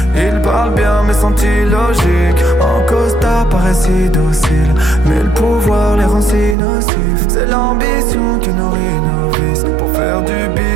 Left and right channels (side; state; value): left; drops out; at 6.6 s